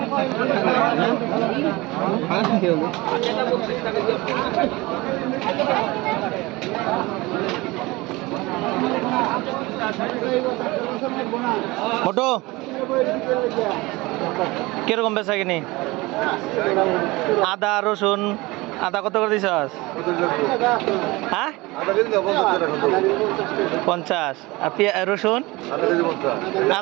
মোটো কিরকম বেচা কিনি? আদা রসুন, আদা কত করে দিছস? হ্যাঁ 50। আর রসুন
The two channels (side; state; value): left; quieter; 22.1 dB